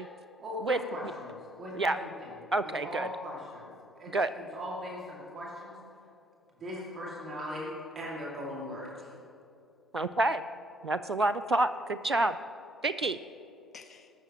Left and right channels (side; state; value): both; normal; correlation 0.68